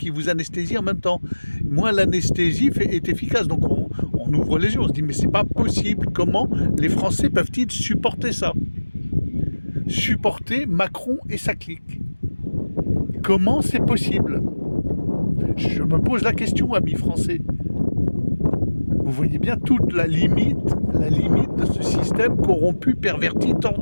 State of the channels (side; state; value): both; inverted; correlation -1.00